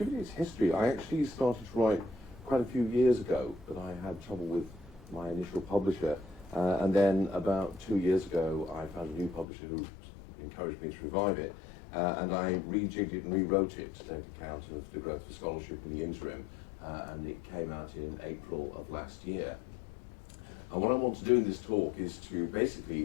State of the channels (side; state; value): right; drops out; at 9.5 s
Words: its history, I actually started to write quite a few years ago, but I had trouble with my initial publisher. And then about 2 years ago, I found a new publisher who encouraged me to revive it. And I rejigged it and rewrote it to take account of the growth of scholarship in the interim. And it came out in April of last year. And what I want to do in this talk is to